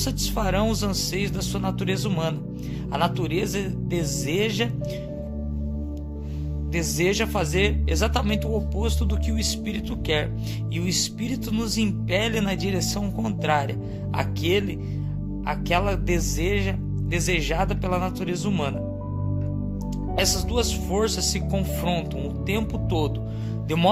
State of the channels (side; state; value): both; identical; correlation 1.00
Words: os anseios da sua natureza humana. A natureza deseja fazer exatamente o oposto do que o Espírito quer, e o Espírito nos impele na direção contrária, aquela desejada pela natureza humana. Essas duas forças se confrontam o tempo todo, de